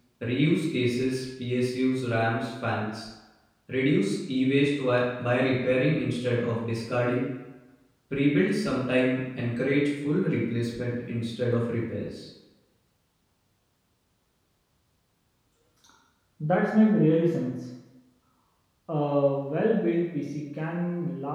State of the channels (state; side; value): identical; both; correlation 1.00